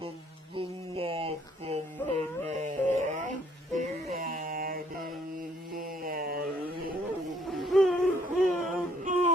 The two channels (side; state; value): both; normal; correlation 0.64